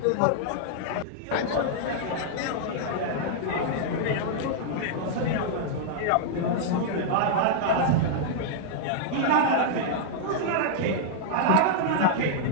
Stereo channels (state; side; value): different; both; correlation -0.01